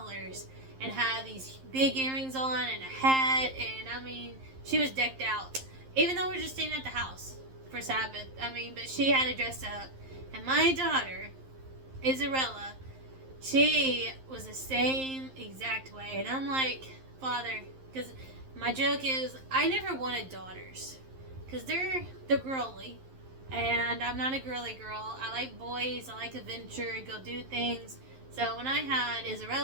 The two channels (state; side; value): late; left; 11 ms